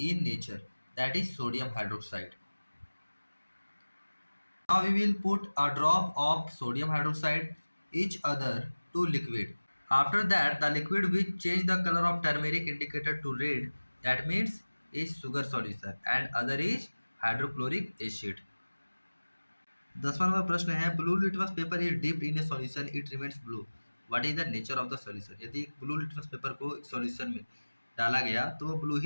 in nature, that is sodium hydroxide. Now we will put a drop of sodium hydroxide each other to liquid. After that, the liquid which change the color of turmeric indicator to red, that means is sugar solution and other is hydrochloric acid। 10वां number प्रश्न है blue litmus paper is dipped in a solution it remains blue, what is the nature of the solution. यदि एक blue litmus paper को एक solution में डाला गया तो वो ब्लू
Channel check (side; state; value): both; inverted; correlation -1.00